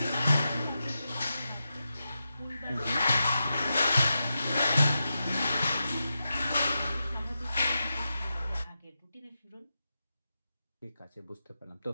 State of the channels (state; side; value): inverted; both; correlation -0.89